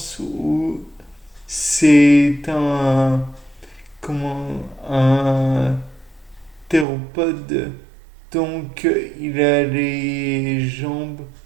où c'est comment, un théropode, donc il a les jambes,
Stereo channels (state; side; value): drops out; left; at 6.9 s